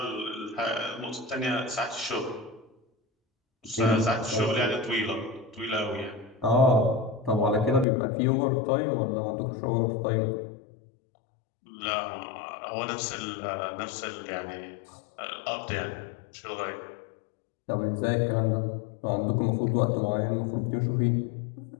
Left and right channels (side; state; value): right; drops out; at 7.9 s